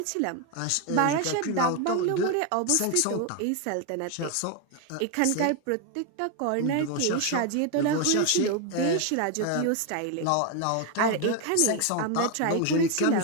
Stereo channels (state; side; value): different; both; correlation 0.01